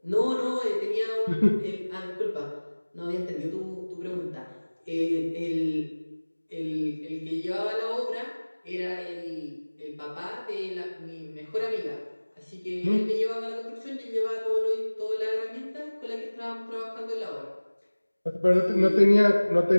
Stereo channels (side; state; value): both; inverted; correlation -1.00